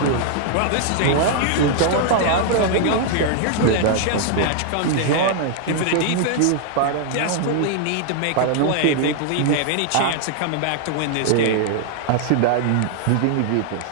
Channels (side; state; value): both; different; correlation 0.00